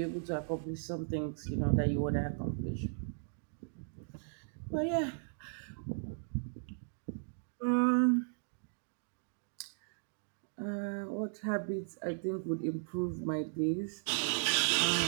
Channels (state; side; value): silent; left; digital silence